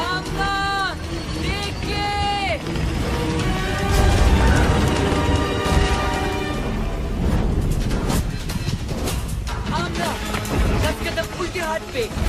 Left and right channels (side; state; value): both; identical; correlation 1.00